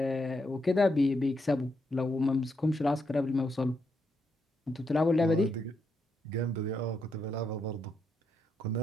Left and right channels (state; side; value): normal; both; correlation 0.80